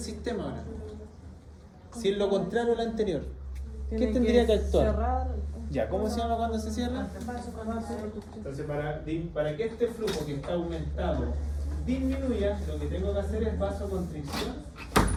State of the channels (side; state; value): both; identical; correlation 1.00